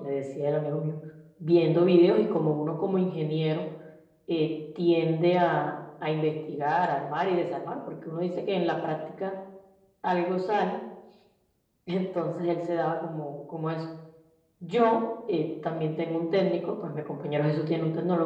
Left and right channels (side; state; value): both; identical; correlation 1.00